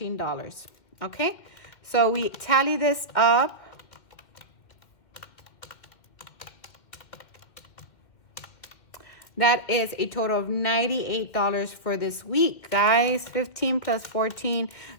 Okay. So we tally this up. That is a total of $98 for this week, guys. 15 plus 14.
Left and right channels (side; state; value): right; late; 2.2 ms